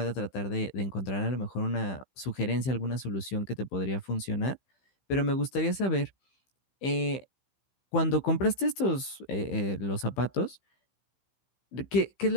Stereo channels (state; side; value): late; right; 15 ms